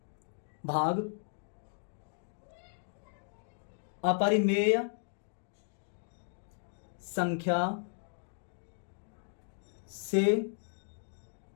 अपरिमेय संख्या से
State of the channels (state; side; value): silent; right; 54 dB below the other